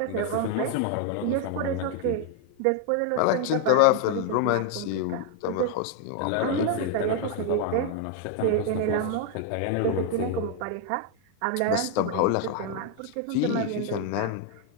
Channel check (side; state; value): both; different; correlation 0.00